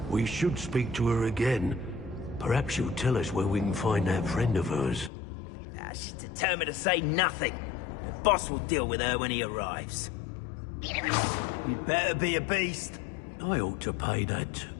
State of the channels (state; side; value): drops out; right; at 5.1 s